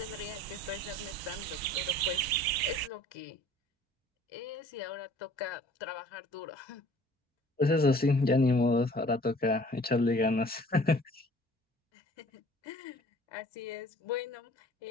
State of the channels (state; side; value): normal; both; correlation 0.51